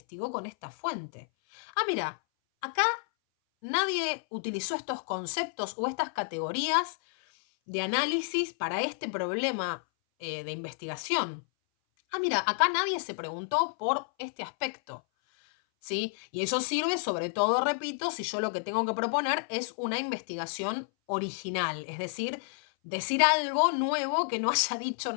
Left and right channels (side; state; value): right; silent; 58 dB below the other